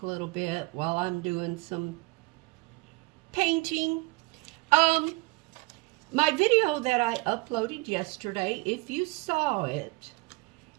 a little bit while I'm doing some painting. My video that I uploaded yesterday, if you saw it,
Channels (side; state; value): left; quieter; 25.1 dB